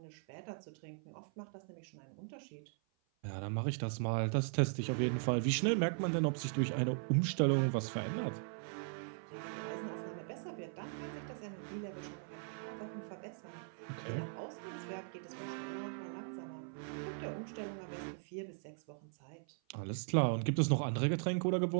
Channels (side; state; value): left; silent; 52 dB below the other